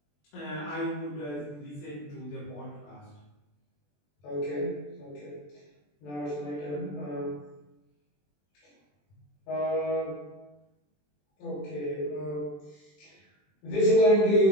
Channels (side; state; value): right; late; 20 ms